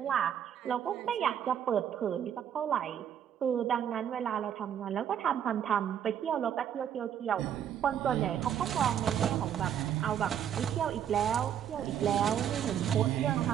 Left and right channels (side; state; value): left; quieter; 9.4 dB